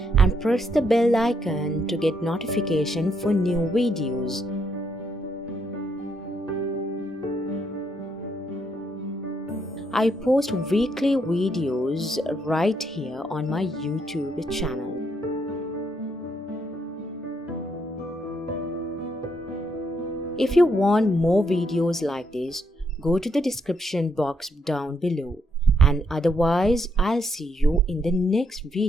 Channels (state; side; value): normal; both; correlation 0.75